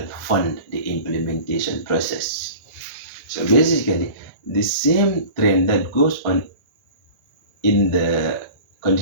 fund the implementation process. So basically, the same trend that goes on in the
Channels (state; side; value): late; right; 1.7 ms